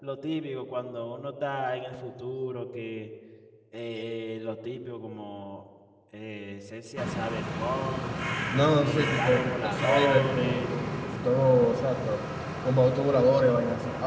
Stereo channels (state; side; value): identical; both; correlation 1.00